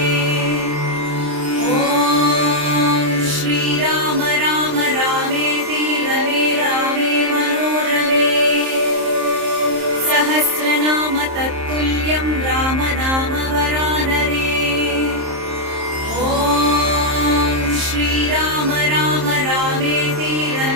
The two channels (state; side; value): late; left; 26 ms